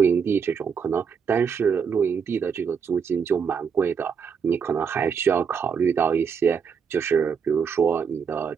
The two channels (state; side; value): quieter; left; 6.5 dB